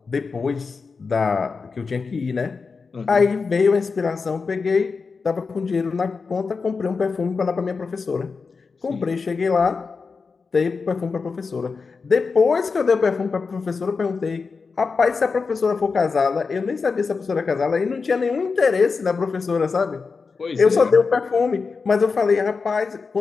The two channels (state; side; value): quieter; right; 4.8 dB